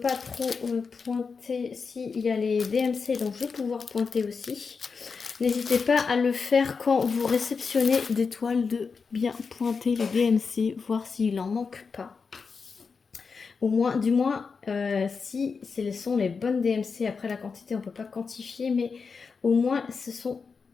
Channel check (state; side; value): quieter; right; 5.2 dB